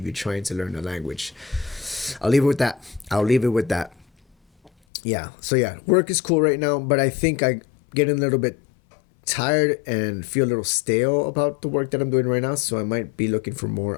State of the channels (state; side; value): drops out; right; at 4.7 s